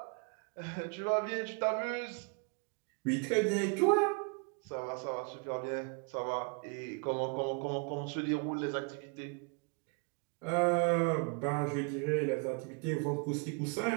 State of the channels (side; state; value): left; quieter; 36.0 dB